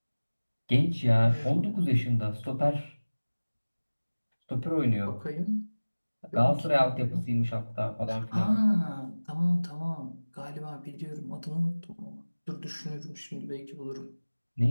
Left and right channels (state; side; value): inverted; both; correlation -1.00